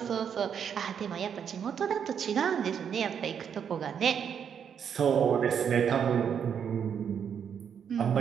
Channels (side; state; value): left; quieter; 7.8 dB